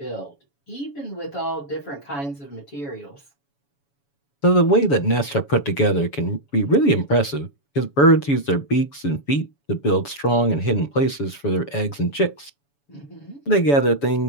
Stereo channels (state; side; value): late; right; 7.1 ms